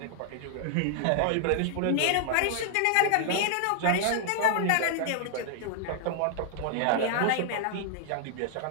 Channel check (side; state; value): both; different; correlation -0.01